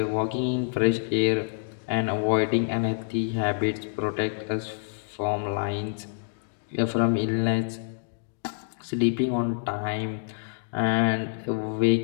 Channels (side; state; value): right; silent; digital silence